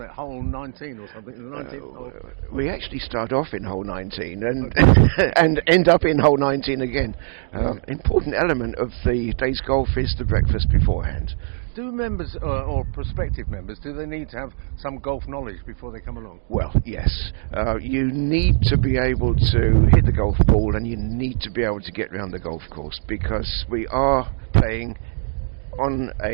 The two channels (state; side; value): silent; left; digital silence